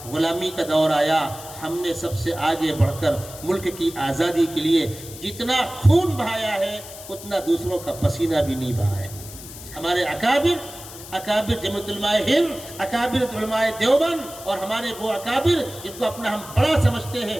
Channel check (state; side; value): noise; left; hiss, 14 dB below the sound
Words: غلامی کا دور آیا، ہم نے سب سے آگے بڑھ کر ملک کی آزادی کے لیے جتنا خون بہایا ہے اتنا دوسروں کا پسینہ بھی نہیں بہا ہے۔ ہمارے اکابر جمعیت علماء ہند، اکابر علماء دیوبند، اور ہمارے وہ اکابر جن کو اپنا ہم بڑا سمجھتے ہیں،